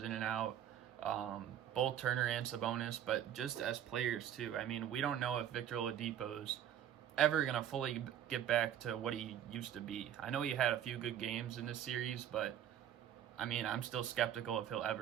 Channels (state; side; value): quieter; left; 10.3 dB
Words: in and out, both Turner and Sabonis, but just as players too. I mean, we don't know if Victor Oladipo's ever going to fully get back to what he used to be. I know he had a few good games in this series, but I mean, I'm still skeptical if he'll